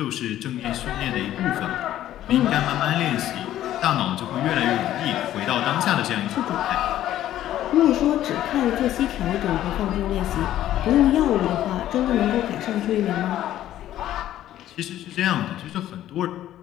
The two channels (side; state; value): right; quieter; 12.7 dB